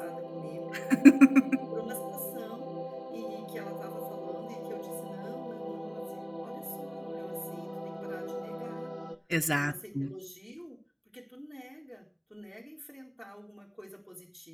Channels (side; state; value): both; identical; correlation 1.00